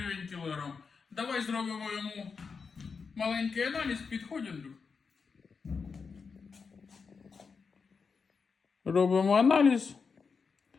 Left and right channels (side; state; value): right; quieter; 5.3 dB